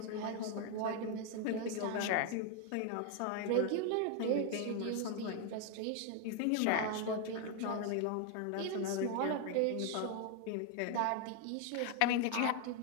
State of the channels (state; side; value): different; both; correlation 0.01